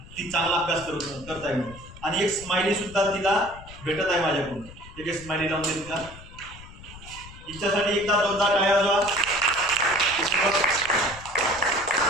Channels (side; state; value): left; noise; rumble, 17 dB below the sound